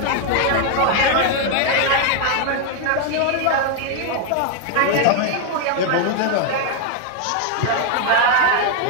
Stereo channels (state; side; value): different; both; correlation 0.00